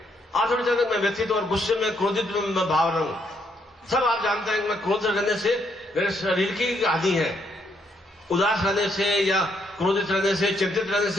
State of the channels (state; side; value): normal; both; correlation 0.74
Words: आप थोड़ी चाहते हैं मैं व्यथित और गुस्से में, क्रोधित में मैं भाव रहूं। सब आप जानते हैं कि मैं क्रोध रहने से मेरे शरीर की हानि है, उदास रहने से या क्रोधित रहने से, चिंतित रहने